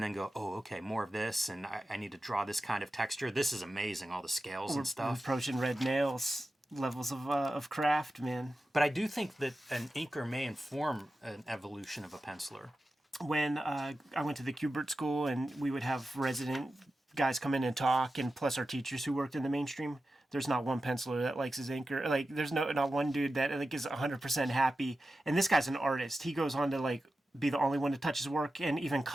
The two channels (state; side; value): normal; both; correlation 0.92